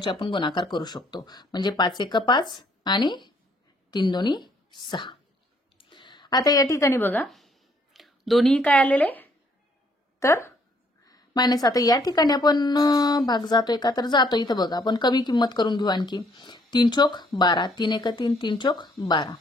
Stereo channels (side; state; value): both; normal; correlation 0.66